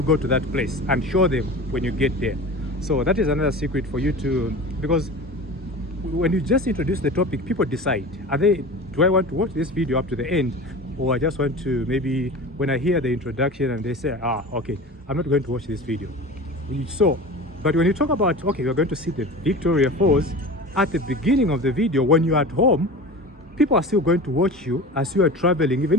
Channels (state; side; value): normal; both; correlation 0.34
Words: go to that place and show them when you get there. So that is another secret for you to, because when you just introduce the topic, people decide, do I want to watch this video up to the end, or I just want to, maybe when I hear the introduction and they say, okay, I'm not going to watch this video. So, but when you talk about, okay, we're going to see the Victoria Falls at the beginning of the video, when you're at home, people are still going to watch you as you are traveling, even